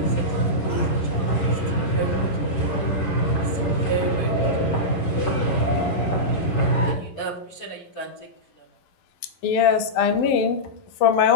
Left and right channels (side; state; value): right; late; 11 ms